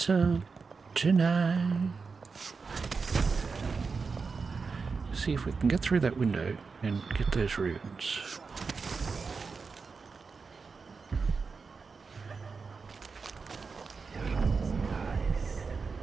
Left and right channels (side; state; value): left; quieter; 4.8 dB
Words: tonight? See if we can get through that window and get those runes.